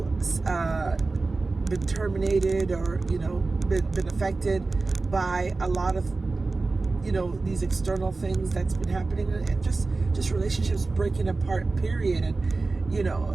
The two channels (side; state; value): left; quieter; 3.6 dB